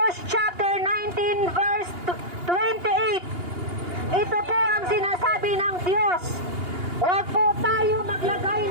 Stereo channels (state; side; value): late; left; 2.8 ms